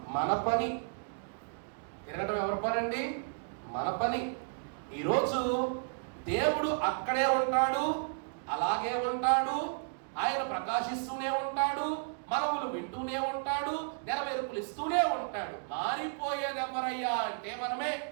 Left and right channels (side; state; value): left; silent; digital silence